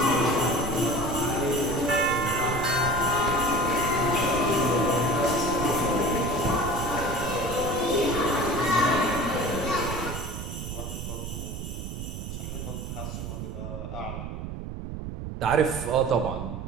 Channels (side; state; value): right; noise; rumble, 7 dB below the sound